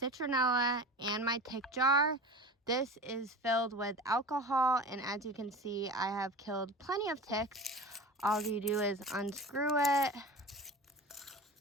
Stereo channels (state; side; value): normal; both; correlation 0.34